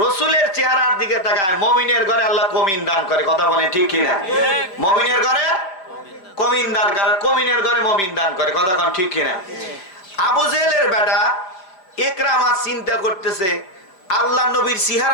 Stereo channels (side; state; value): right; late; 5.1 ms